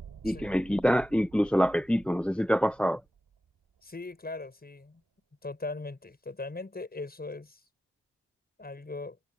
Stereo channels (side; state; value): both; normal; correlation 0.93